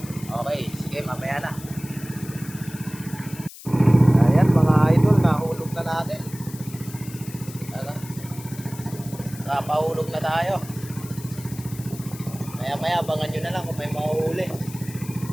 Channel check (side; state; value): left; noise; hiss, 16 dB below the sound